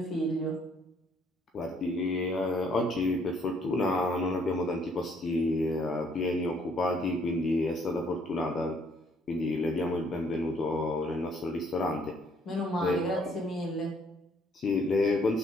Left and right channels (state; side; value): normal; both; correlation 0.65